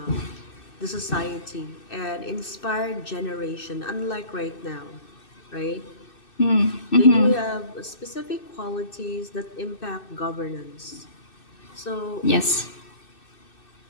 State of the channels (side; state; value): right; late; 2.6 ms